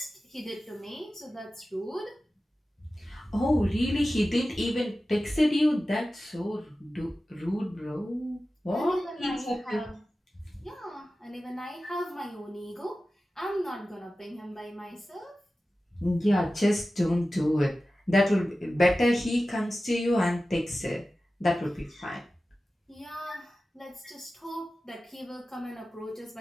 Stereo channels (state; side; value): normal; both; correlation 0.95